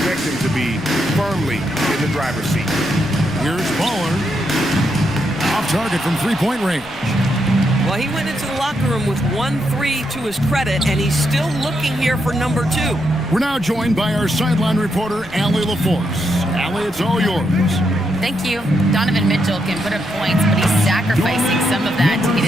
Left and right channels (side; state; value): left; noise; rumble, 22 dB below the sound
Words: them to be, firmly in the driver's seat. Here's Baller. Off target from three-point range. Well, he went into the locker room with 1-3 to his credit, and he's still looking here for number 2. We're now joined by our sideline reporter, Allie LaForce. Allie, it's all yours. Thank you. Donovan Mitchell can put up points, but he's sacrificing some of that to